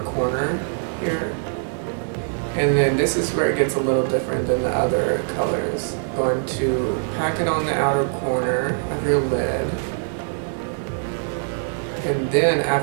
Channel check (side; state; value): left; silent; digital silence